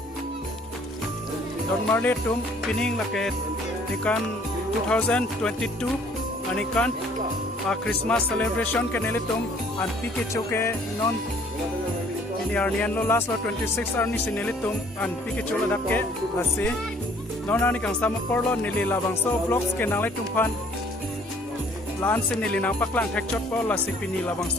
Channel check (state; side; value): normal; both; correlation 0.58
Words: Don malet tum pining laket ikan 2022 anikan Christmas celebration ke nelitum Anpi Kecho ke non ini arnian lo last lo 26 arni sinelitum Anpi Kecho lo dakke lasi non ani kang sama porlo nili labang so vlogs ke nalitum pan lan se nili nang paklang hekchot po lasi pini labang